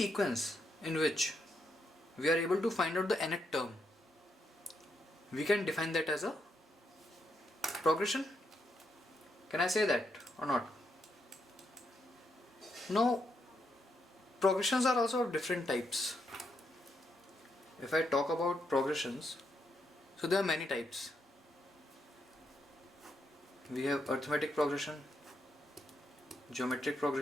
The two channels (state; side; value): normal; both; correlation 0.79